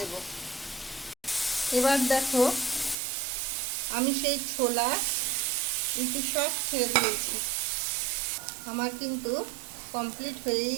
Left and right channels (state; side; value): drops out; left; at 3.0 s